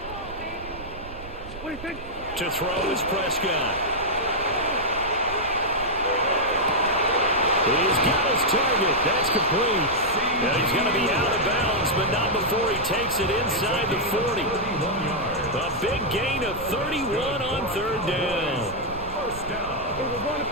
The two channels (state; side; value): noise; right; rumble, 15 dB below the sound